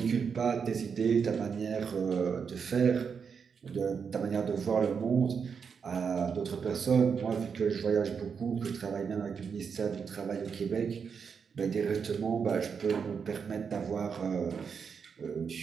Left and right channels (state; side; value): quieter; left; 6.3 dB